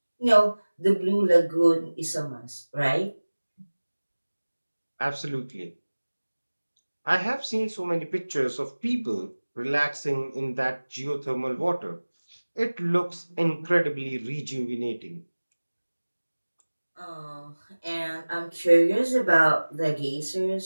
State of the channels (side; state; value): both; inverted; correlation -1.00